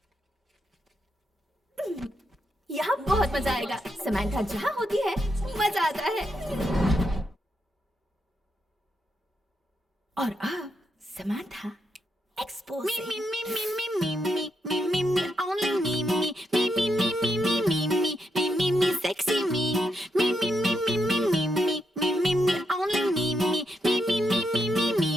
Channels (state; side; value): normal; both; correlation 0.82